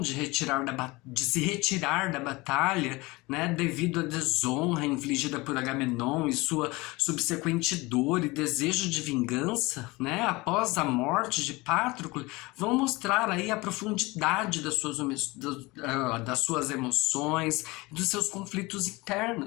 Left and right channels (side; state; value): right; quieter; 22.8 dB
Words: de se retirar da batalha, né, devido à desonra infligida por Agamenon e sua subsequente dor e desejo de vingança, né, após a morte de Patroclo, vão mostrar aí a profundidade das suas emoções, dos seus conflitos